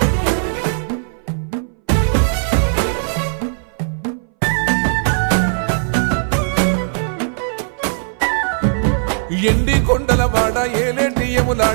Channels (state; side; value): silent; left; 64 dB below the other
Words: ఎండి కొండలవాడ ఏలేటి